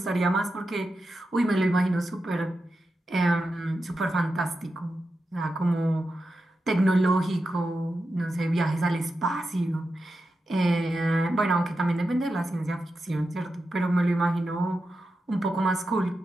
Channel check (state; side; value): normal; both; correlation 0.89